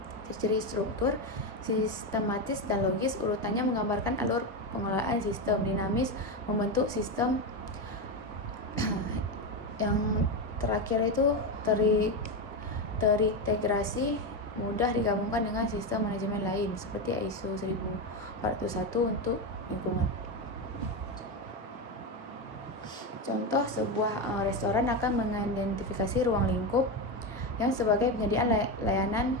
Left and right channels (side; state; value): both; normal; correlation 0.13